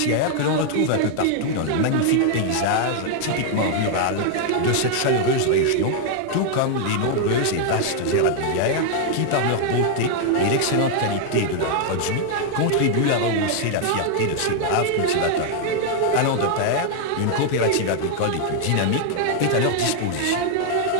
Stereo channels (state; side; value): different; both; correlation 0.00